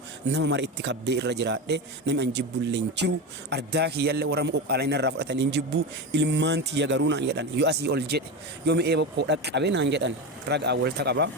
nama mara itti kabbee irra jiraadhe namni an jibbu illee hin jiru ardaa kiyyallee warra qoqqaalaa inni irraa fudhatanii hin jibbu ilmaan tiyya garuu naan jedhan yoo asii ol jedhe yoo mi'ee bokkoo dhaqqabe naan jedhan ragaa walta qaba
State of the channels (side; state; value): both; normal; correlation 0.20